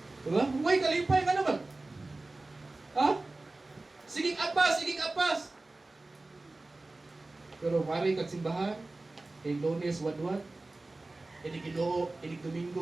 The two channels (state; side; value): quieter; left; 3.1 dB